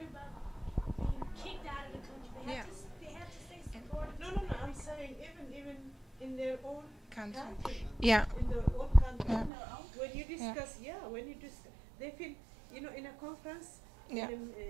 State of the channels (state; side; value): drops out; left; at 9.5 s